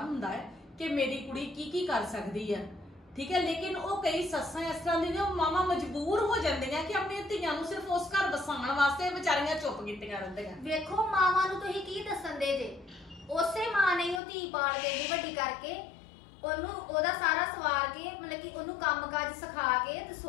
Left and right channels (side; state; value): right; drops out; at 14.2 s